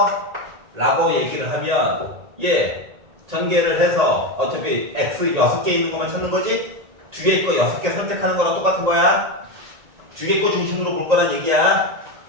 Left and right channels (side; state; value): left; late; 1.9 ms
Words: 라고 얘기를 하면 전개를 해서 어차피 x 6개 있는 것만 찾는 거지 뒤에 거 6개 선택하는 거랑 똑같은 거야. 뒤에 거 중심으로 볼 거란 얘기야.